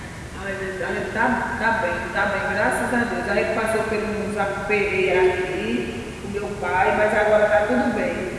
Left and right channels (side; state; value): both; identical; correlation 1.00